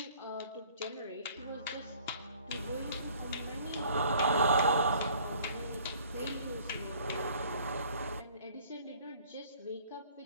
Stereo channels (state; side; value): inverted; both; correlation -0.54